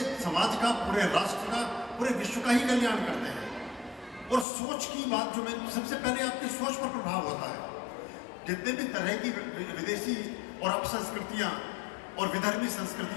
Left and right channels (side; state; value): right; drops out; at 4.5 s